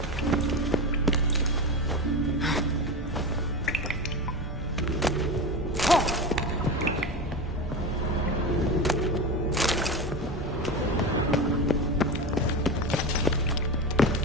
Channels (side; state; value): both; normal; correlation 0.23